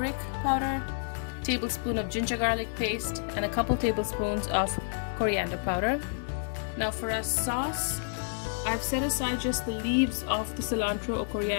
powder, tablespoon of ginger garlic paste, and a couple tablespoons of coriander powder. Now for our sauce, I've set aside just the leaves of the cilantro or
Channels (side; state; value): right; silent; 55 dB below the other